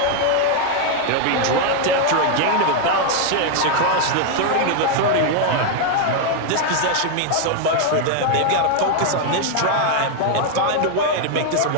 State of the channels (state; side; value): different; both; correlation 0.00